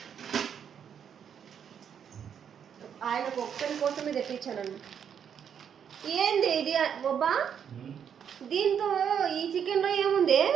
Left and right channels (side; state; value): left; quieter; 8.1 dB